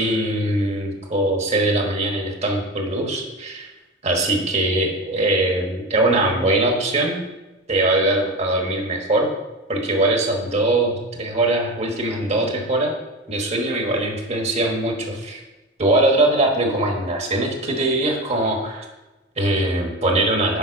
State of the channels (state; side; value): normal; both; correlation 0.24